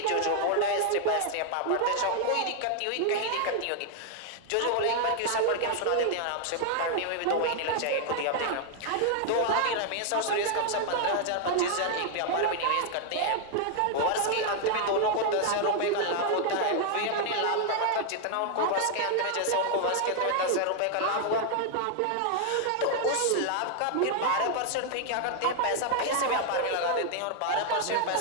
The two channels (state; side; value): different; both; correlation 0.00